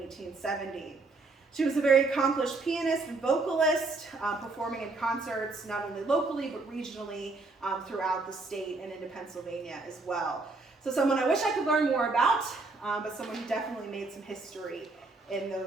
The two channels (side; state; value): left; quieter; 3.5 dB